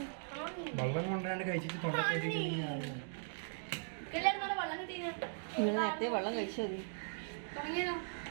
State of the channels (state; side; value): silent; left; digital silence